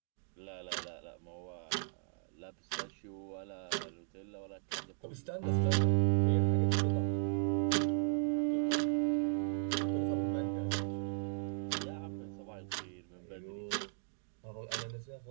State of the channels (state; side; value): silent; left; digital silence